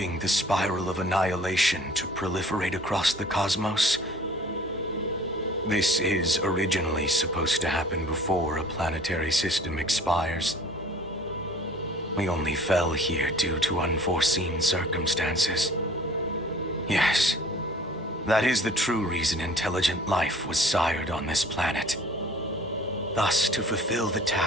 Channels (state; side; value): normal; both; correlation 0.50